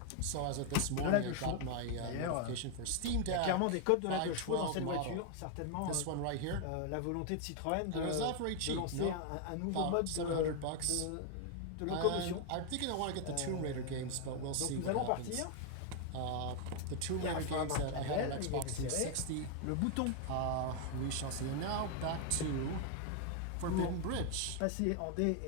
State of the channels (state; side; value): different; both; correlation 0.00